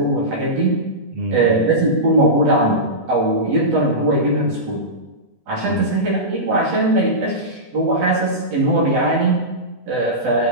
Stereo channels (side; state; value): left; late; 8.2 ms